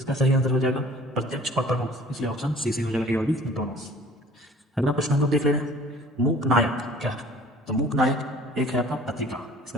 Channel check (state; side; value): normal; both; correlation 0.50